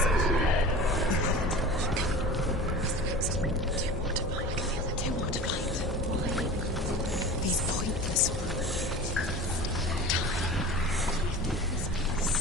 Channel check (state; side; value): normal; both; correlation 0.36